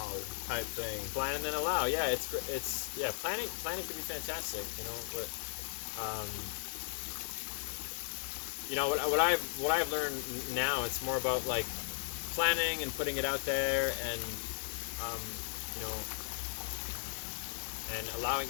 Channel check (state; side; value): silent; right; digital silence